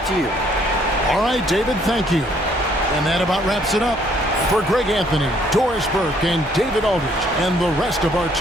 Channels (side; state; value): both; normal; correlation 0.65